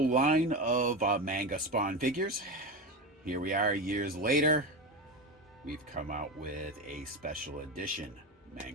line of Manga Spawn figures. Here we are years later. We've come out with a special edition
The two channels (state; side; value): normal; both; correlation 0.20